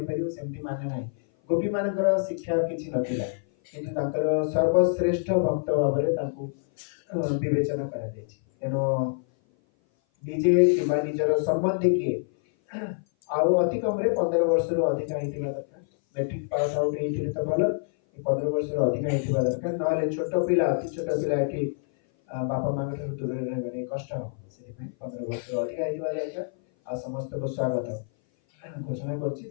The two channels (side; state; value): right; silent; 57 dB below the other